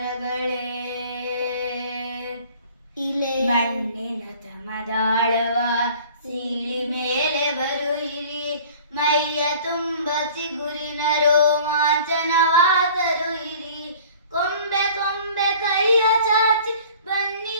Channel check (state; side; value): inverted; both; correlation -0.48